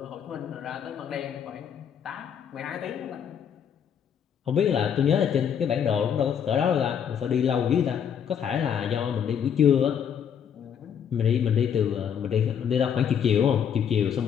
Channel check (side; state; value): right; quieter; 8.2 dB